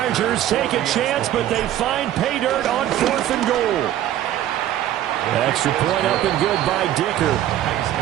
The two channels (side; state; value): left; quieter; 12.3 dB